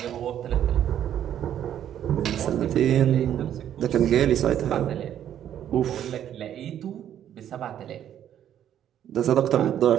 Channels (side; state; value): left; quieter; 10.4 dB